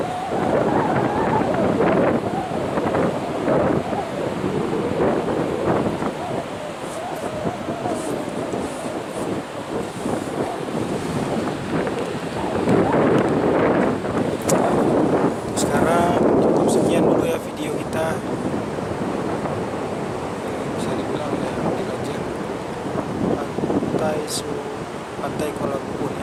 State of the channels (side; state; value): both; identical; correlation 1.00